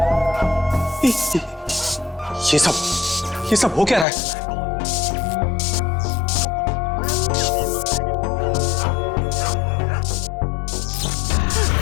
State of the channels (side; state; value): right; drops out; at 4.0 s